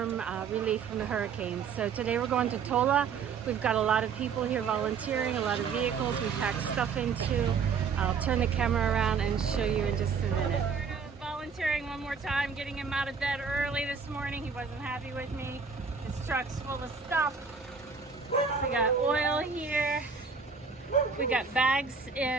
relief from the hurricanes. So today we're going to Tola. We've got a lot of people here volunteering, a lot of vehicles we packed stuff into. I'll turn the camera around and show you in just a minute. Volunteering one more time, getting him out of bed early this morning. He wasn't happy with me. His truck's full of stuff. We got oil here. We got bags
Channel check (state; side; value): quieter; left; 5.7 dB